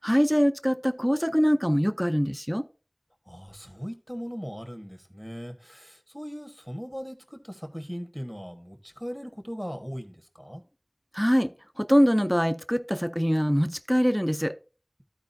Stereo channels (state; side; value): identical; both; correlation 1.00